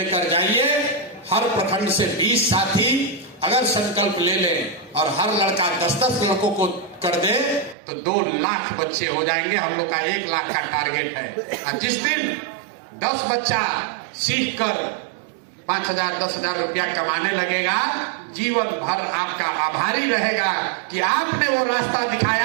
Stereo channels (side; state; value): left; drops out; at 7.8 s